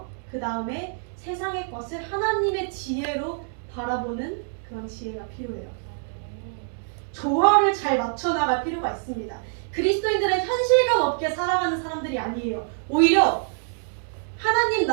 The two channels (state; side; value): silent; left; digital silence